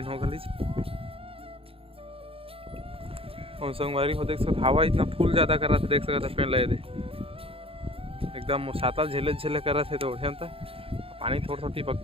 हो गई। और संगवारी हो देख सकते हवा इतना फूल ज़्यादा कर रहा था देख सकता पेड़ लगे थे एकदम सातल झेले कर रहे थे तो उठे था पानी थोड़ा थोड़ा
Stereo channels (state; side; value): late; left; 0.27 ms